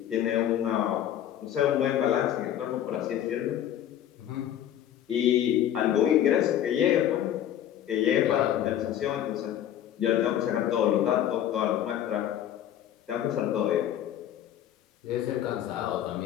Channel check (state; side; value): quieter; right; 10.9 dB